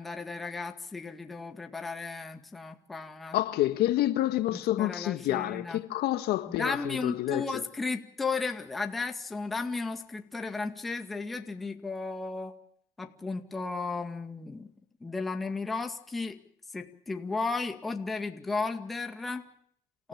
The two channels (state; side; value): quieter; right; 6.9 dB